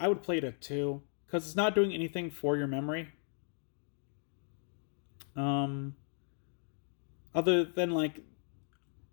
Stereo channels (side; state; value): right; silent; 54 dB below the other